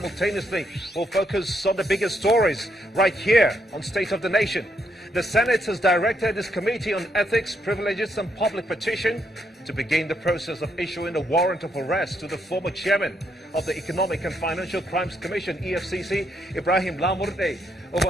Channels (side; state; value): both; normal; correlation 0.76